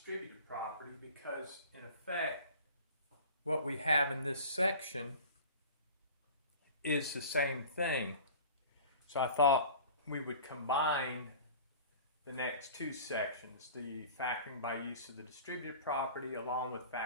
property, because in effect what we have in this section is the same thing. So I thought we would combine the next two sections, the factoring by use of the distributive property along with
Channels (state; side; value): inverted; both; correlation -0.41